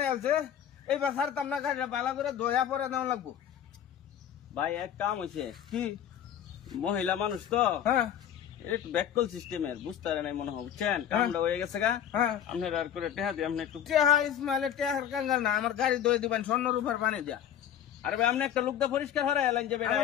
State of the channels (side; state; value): right; quieter; 9.8 dB